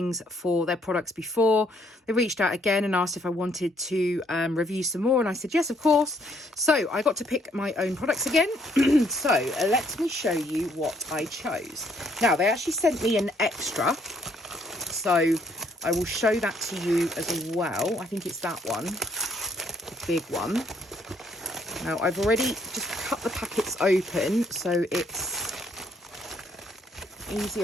for their products before. They reached out again and asked if I wanted to review some more, and I said yes, of course. So I got to pick my own products again. So let me show you what I chose. Now, they actually sent me an extra, so I will show that to you as well. I think it's that one, the big one. Now, I've already just cut the packets open, so it's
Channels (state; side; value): normal; both; correlation 0.68